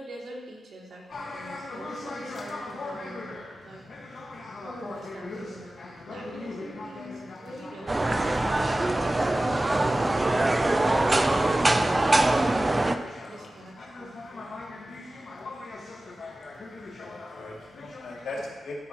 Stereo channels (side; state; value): both; normal; correlation 0.96